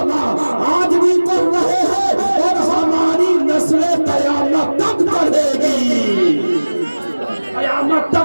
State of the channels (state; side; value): inverted; both; correlation -1.00